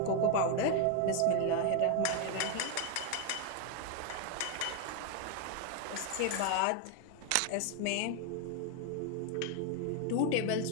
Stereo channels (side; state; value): both; different; correlation 0.00